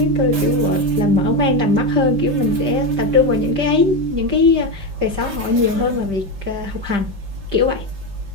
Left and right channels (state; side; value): late; left; 5.1 ms